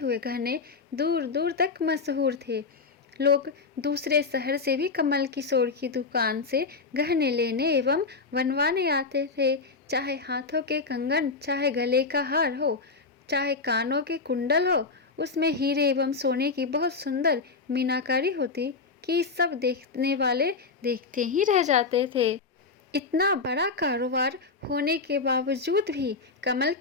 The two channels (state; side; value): quieter; right; 4.4 dB